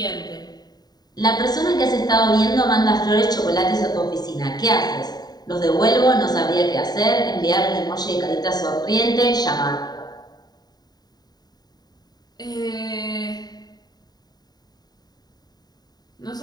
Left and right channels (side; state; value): right; late; 0.20 ms